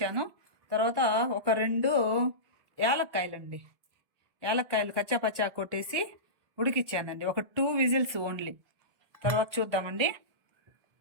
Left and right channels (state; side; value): late; left; 1.6 ms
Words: తర్వాత ఒక 2 యాలక్కాయలండి, యాలక్కాయలు కచ్చాపచ్చా కొట్టేసి ఉడికిచ్చానండి. ఒక 2 విజిల్స్ ఓన్లీ. తర్వాత చూద్దామండి.